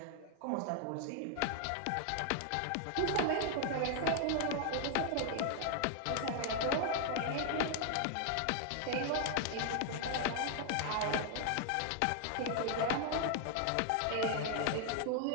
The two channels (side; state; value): both; different; correlation 0.00